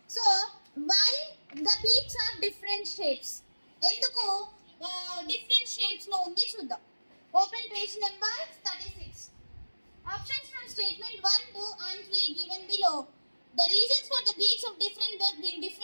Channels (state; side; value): inverted; both; correlation -1.00